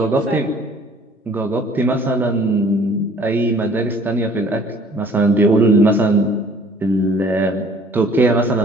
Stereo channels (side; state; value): both; normal; correlation 0.54